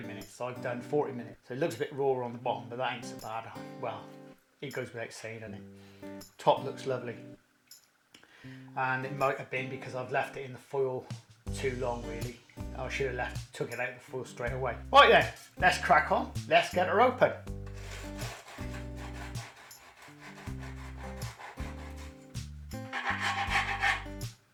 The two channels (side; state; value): both; identical; correlation 1.00